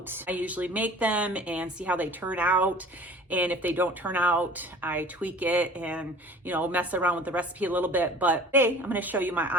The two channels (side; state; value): both; normal; correlation 0.45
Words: I usually make them and see how they turn out. And if they don't turn out, I tweak it and, mess around with the recipe a little bit. But today, I'm going to show you my